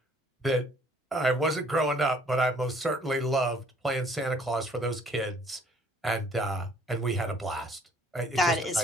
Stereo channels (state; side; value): normal; both; correlation 0.59